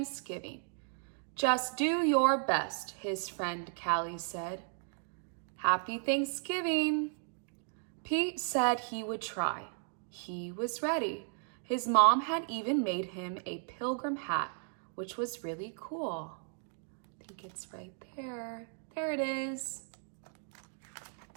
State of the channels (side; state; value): left; silent; 54 dB below the other